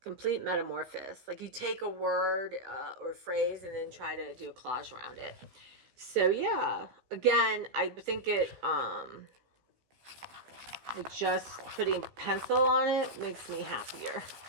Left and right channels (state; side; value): late; left; 16 ms